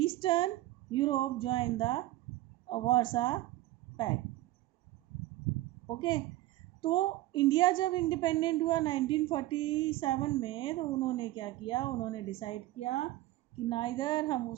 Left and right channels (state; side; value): quieter; left; 16.8 dB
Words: Europe joined the Warsaw pact. Okay. तो India जब independent हुआ 1947 में, तो उन्होंने क्या किया, उन्होंने decide किया कि ना इधर हम